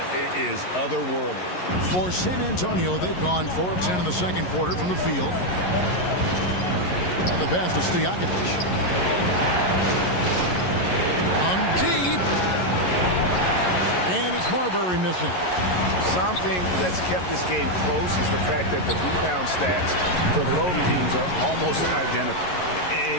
is otherworldly. For San Antonio, they've gone 4 of 10 in the second quarter from the field. And the pass to Stojakovic. On deep. And it's Marbury missing. Something that's kept this game close is the fact that the rebound stats for both teams are almost identical.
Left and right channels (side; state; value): right; late; 11 ms